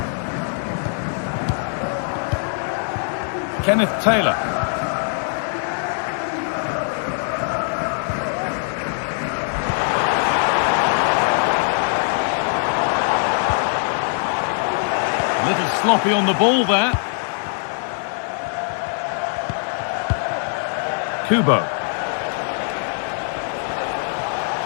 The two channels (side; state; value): right; silent; 61 dB below the other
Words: Kenneth Taylor. A little sloppy on the ball there. Kubo.